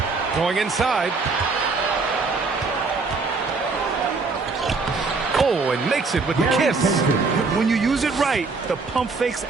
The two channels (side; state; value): left; quieter; 4.2 dB